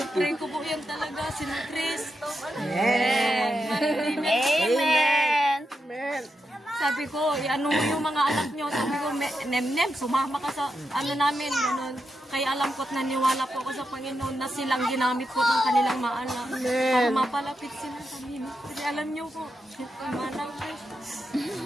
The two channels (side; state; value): both; normal; correlation 0.86